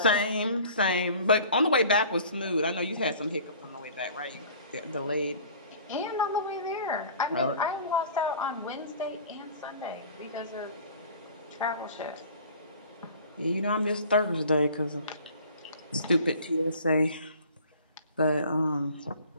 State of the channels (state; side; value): inverted; both; correlation -0.46